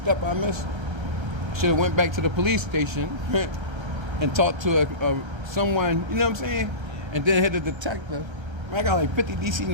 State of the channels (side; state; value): left; late; 1.3 ms